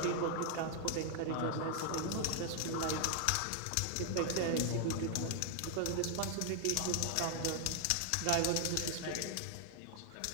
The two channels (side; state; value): both; different; correlation 0.00